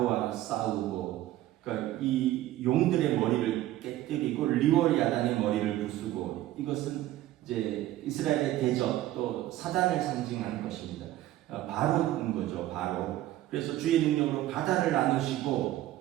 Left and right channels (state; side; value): quieter; left; 14.7 dB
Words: 싸우고, 그러니까 이 용들의 머리를 깨뜨리고 리월야단의 머리를 부수고, 이것은 이제 이스라엘의 대적 또 사단을 상징하는 것입니다. 바로인 거죠, 바로. 그래서 주의 능력으로 바다를